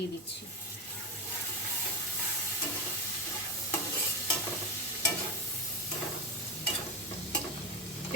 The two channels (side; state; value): both; normal; correlation 0.16